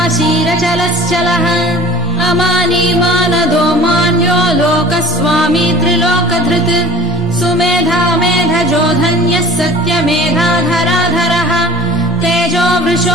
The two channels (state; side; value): normal; both; correlation 0.43